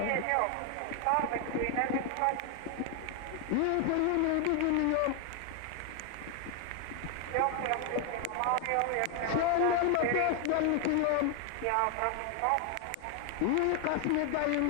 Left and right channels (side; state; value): both; different; correlation 0.00